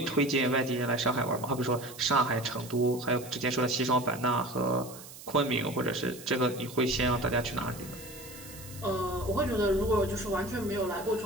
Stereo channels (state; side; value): noise; right; hiss, 16 dB below the sound